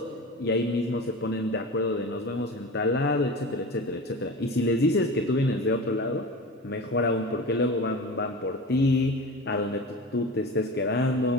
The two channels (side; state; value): both; normal; correlation 0.32